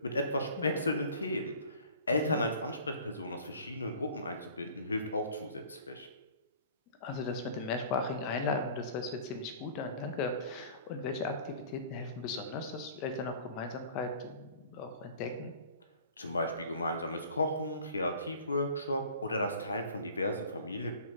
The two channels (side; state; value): both; inverted; correlation -0.46